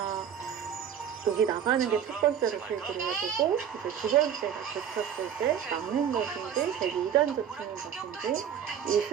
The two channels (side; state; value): left; quieter; 8.7 dB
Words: 여기 나가는 게 첫 번째로 필기를 해보고 이제 두 번째가 젖혔을 때 막는 것인지 되게 2단 젖히는 것인지 이